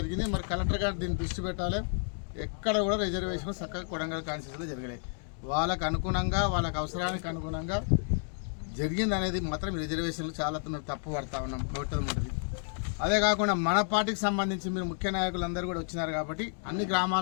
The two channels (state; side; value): silent; right; 57 dB below the other